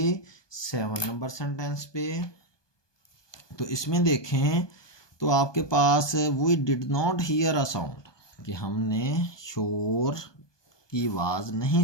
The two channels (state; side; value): late; right; 1.2 ms